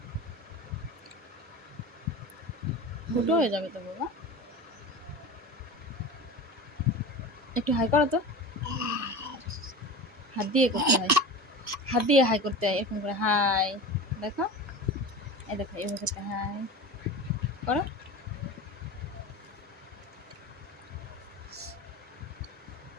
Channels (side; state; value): both; normal; correlation 0.31